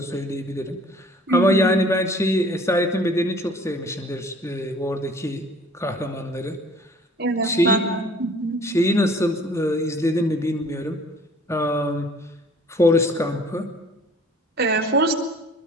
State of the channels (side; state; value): both; normal; correlation 0.51